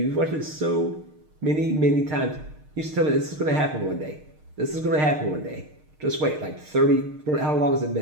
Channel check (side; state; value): left; late; 6.6 ms